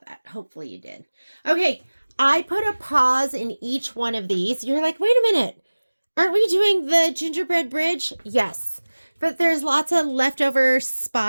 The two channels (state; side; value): inverted; both; correlation -1.00